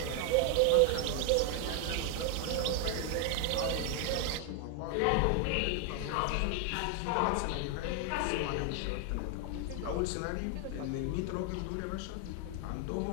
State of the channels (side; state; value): both; different; correlation 0.00